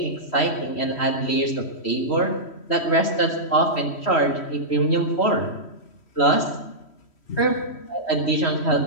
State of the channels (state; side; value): late; right; 3.1 ms